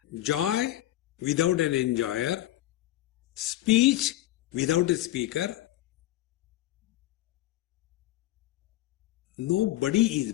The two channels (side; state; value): right; quieter; 15.3 dB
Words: joy without an enjoyer, speech without a speaker. Nobody is